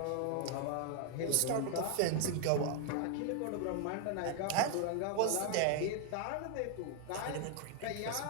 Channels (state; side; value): different; both; correlation 0.00